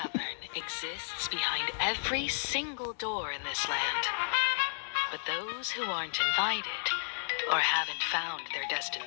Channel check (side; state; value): right; silent; digital silence